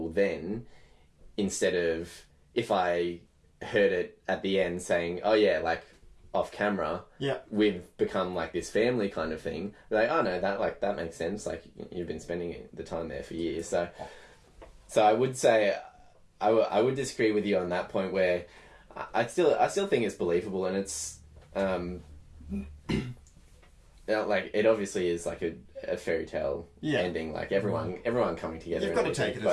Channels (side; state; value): both; identical; correlation 1.00